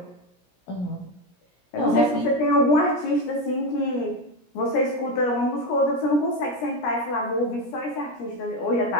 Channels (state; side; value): late; right; 17 ms